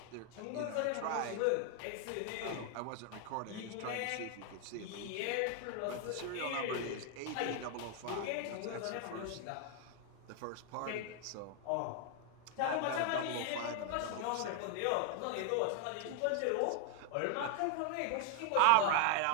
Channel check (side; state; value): both; different; correlation 0.00